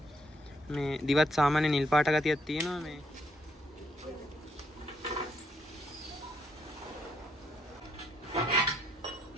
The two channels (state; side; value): normal; both; correlation 0.73